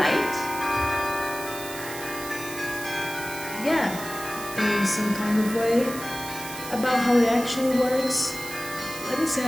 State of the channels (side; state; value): right; noise; hiss, 11 dB below the sound